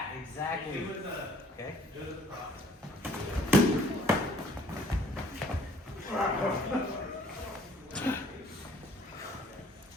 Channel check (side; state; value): both; normal; correlation 0.57